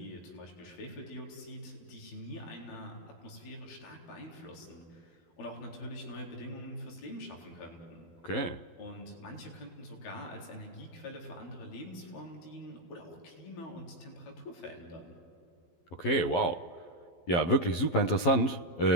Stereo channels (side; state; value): right; late; 12 ms